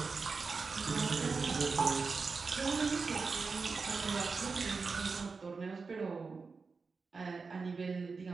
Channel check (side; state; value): left; quieter; 4.6 dB